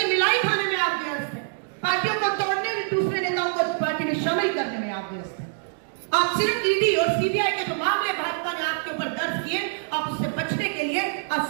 मिलाई खाने में आप व्यस्त है, पार्टियों को तोड़ने में, दूसरे नेताओं को पार्टी में शामिल करने में आप व्यस्त है। आप सिर्फ ईडी और सीबीआई के जो मामले भाजपा ने आपके ऊपर दर्ज किए, आप उससे बचने के लिए आज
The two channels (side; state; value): left; silent; digital silence